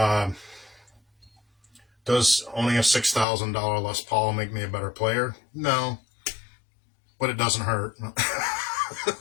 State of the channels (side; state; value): right; drops out; at 3.2 s